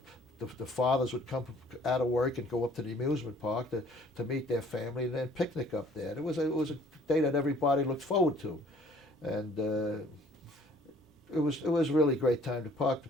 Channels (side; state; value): both; normal; correlation 0.56